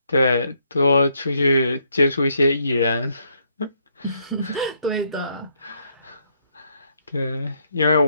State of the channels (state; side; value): inverted; both; correlation -0.73